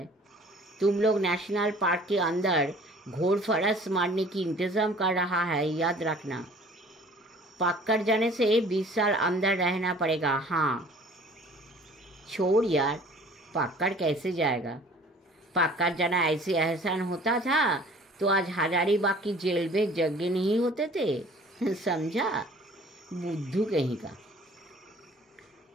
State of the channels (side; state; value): both; normal; correlation 0.50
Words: तुम लोग नेशनल पार्क के अंदर घोड़ फरस मारने की इंतजाम कर रहा है, याद रखना। पकड़ जाने से 20 साल अंदर रहना पड़ेगा। हाँ। छोड़ यार, पकड़ कैसे जाएगा? पकड़ जाना ऐसे एहसान होता था तो आज हजारीबाग की जेल में जगह नहीं होते थे, समझा? बुद्धू कहीं का।